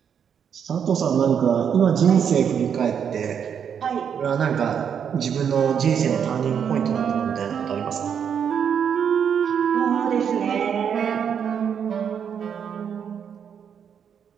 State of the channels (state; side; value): quieter; left; 7.8 dB